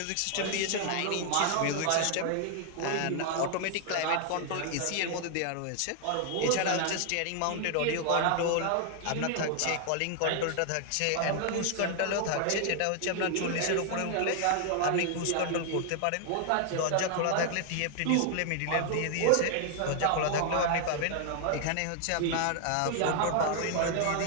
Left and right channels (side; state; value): both; different; correlation 0.00